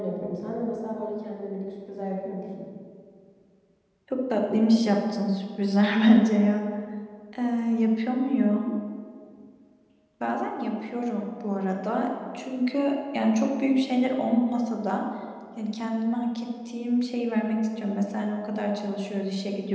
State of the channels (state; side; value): identical; both; correlation 1.00